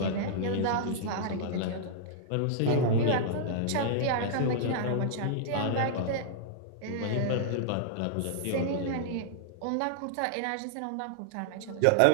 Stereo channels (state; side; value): different; both; correlation -0.01